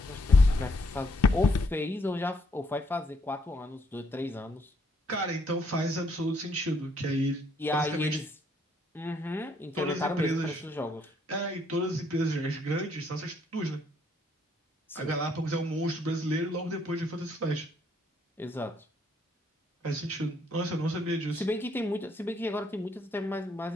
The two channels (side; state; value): both; normal; correlation 0.69